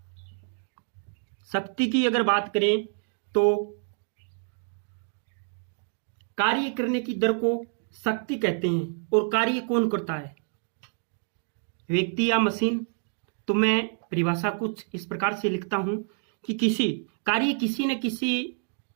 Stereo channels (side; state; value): left; silent; 59 dB below the other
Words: शक्ति की अगर बात करें तो कार्य करने की दर को शक्ति कहते हैं। और कार्य कौन करता है? व्यक्ति या मशीन। तो मैं परिभाषा कुछ इस प्रकार से लिखता हूं कि कार्य किसी न किसी